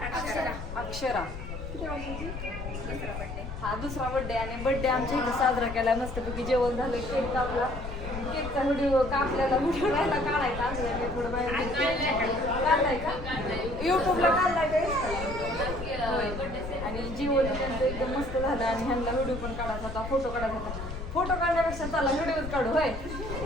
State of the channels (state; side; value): noise; left; rumble, 8 dB below the sound